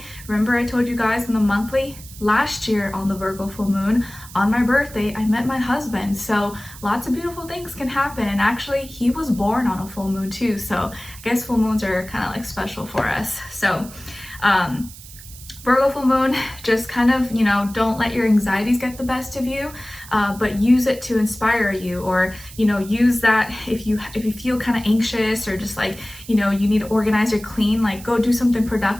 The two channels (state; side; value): noise; right; hiss, 17 dB below the sound